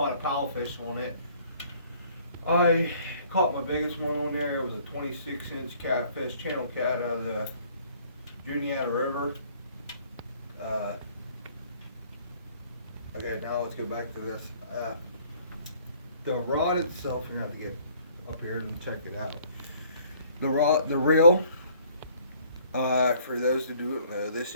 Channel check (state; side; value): inverted; both; correlation -0.59